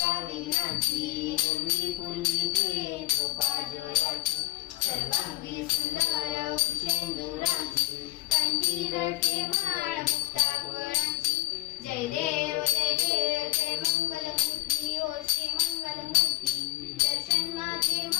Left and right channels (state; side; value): quieter; right; 17.3 dB